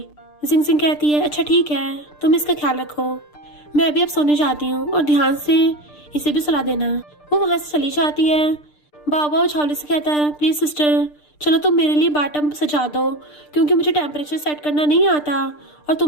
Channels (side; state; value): right; late; 6.7 ms